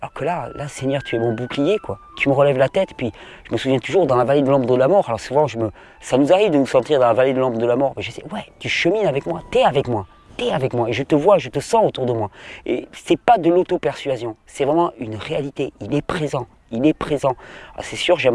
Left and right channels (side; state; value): both; identical; correlation 1.00